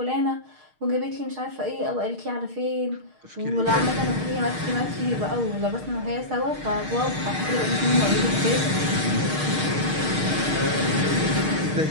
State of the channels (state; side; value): late; left; 6.5 ms